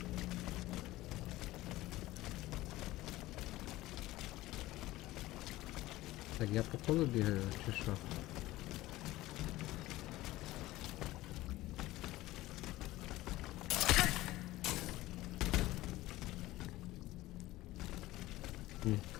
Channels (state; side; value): quieter; right; 17.4 dB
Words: Так, я по колу бігаю, чи що? Ні.